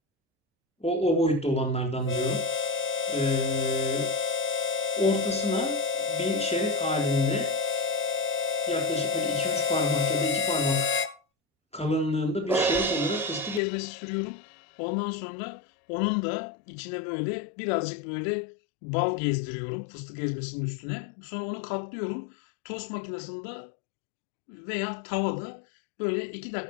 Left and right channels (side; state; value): right; drops out; at 13.6 s